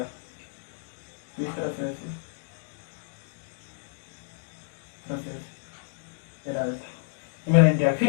इस तरह से ऐसे, तरह से ऐसे, ये रहा देखो, ये मेरा इंडिया। फिर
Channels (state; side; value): silent; right; digital silence